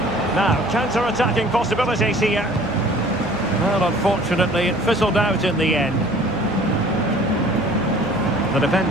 Now, counter-attacking possibilities here. Well, unfortunately, it fizzled out in the end. The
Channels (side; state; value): right; noise; hum, 12 dB below the sound